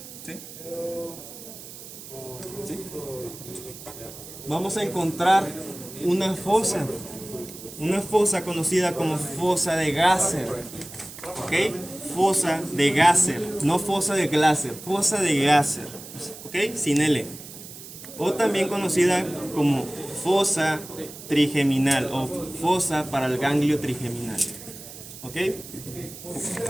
¿Sí? ¿Sí? Vamos a encontrar una fosa conocida como fosa de Gasser, ¿ok? Fosa de Gasser, no fosa de Glaser, fosa de Gasser, ¿ok? Sin L. O también conocida como fosa trigeminal o fosa para el ganglio trigeminal, ¿ok?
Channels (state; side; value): noise; right; hiss, 14 dB below the sound